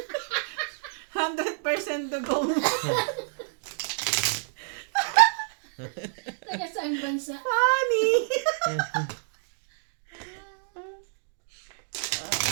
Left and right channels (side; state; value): left; silent; digital silence